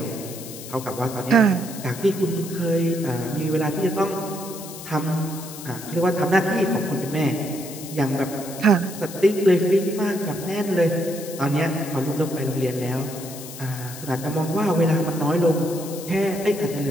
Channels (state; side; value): noise; left; hiss, 13 dB below the sound